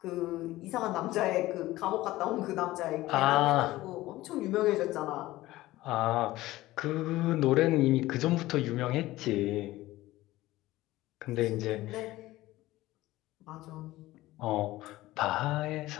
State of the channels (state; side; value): quieter; right; 17.2 dB